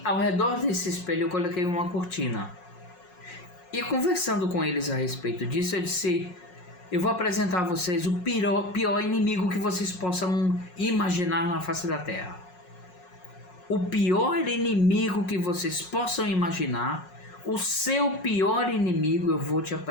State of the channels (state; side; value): late; right; 5.5 ms